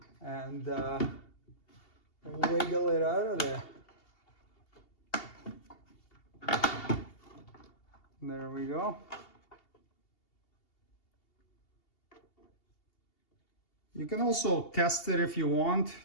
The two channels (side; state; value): right; late; 2.8 ms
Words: and wiggle it out of there. There we go. You can also test it if you want,